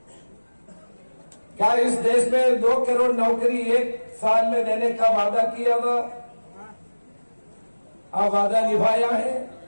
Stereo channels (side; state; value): both; inverted; correlation -1.00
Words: क्या इस देश में 2 करोड़ नौकरी 1 साल में देने का वादा किया था, अब वादा निभाया है।